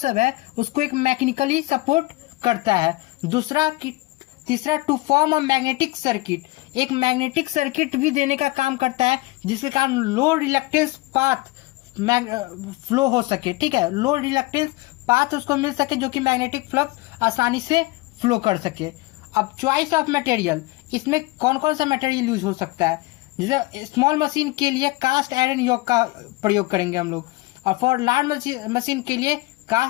है, उसको एक मैकेनिकली सपोर्ट करता है। तीसरा to form a magnetic circuit, एक मैग्नेटिक सर्किट भी देने का काम करता है जिसके कारण लो रिलक्टेंस पाथ फ्लो हो सके। ठीक है, लो रिलक्टेंस पाथ उसको मिल सके जो कि मैग्नेटिक फ्लक्स आसानी से फ्लो कर सके। अब चॉइस ऑफ मटेरियल, इसमें कौन कौन सा मटेरियल यूज हो सकता है। जैसे स्मॉल मशीन के लिए कास्ट आयरन यॉक का प्रयोग करेंगे हम लोग, और फॉर लार्ज मशीन के लिए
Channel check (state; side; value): quieter; right; 21.5 dB